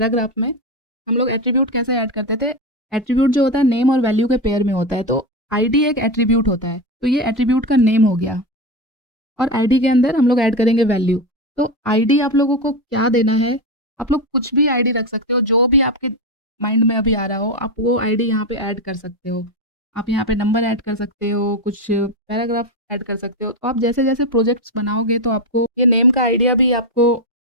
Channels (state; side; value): normal; both; correlation 0.14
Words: में हम लोग एट्रीब्यूट कैसे ऐड करते थे। एट्रीब्यूट जो होता है नेम और वैल्यू के पेयर में होता है, तो आईडी एक एट्रीब्यूट होता है, तो ये एट्रीब्यूट का नेम हो गया। और आईडी के अंदर हम लोग ऐड करेंगे वैल्यू। तो आईडी आप लोगों को क्या देना है, आप लोग कुछ भी आईडी रख सकते हो, जो भी आपके माइंड में अभी आ रहा हो आप वो आईडी यहाँ पे ऐड कर सकते हो। आप यहाँ पे नंबर ऐड कर सकते हो, कुछ पैराग्राफ ऐड कर सकते हो। तो आप जैसे जैसे प्रोजेक्ट्स बनाओगे तो आपको ये नेम का आइडिया भी आपको